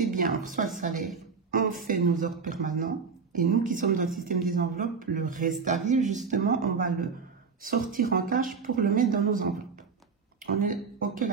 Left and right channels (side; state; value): left; quieter; 5.4 dB